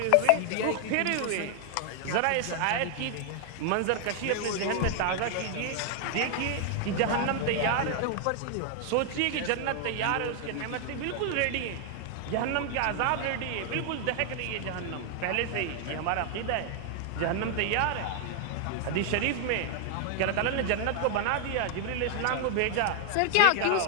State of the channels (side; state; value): both; different; correlation 0.00